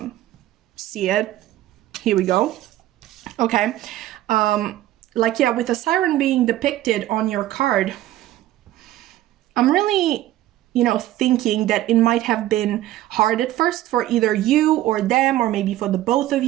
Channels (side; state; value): left; quieter; 14.5 dB